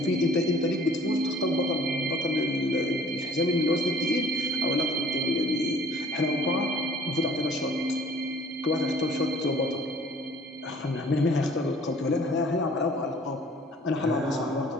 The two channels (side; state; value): both; normal; correlation 0.53